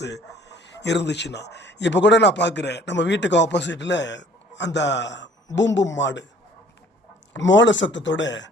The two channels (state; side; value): normal; both; correlation 0.55